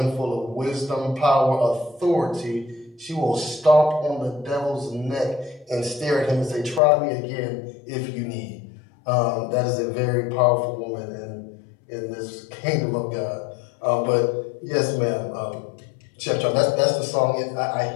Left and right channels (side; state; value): right; drops out; at 6.8 s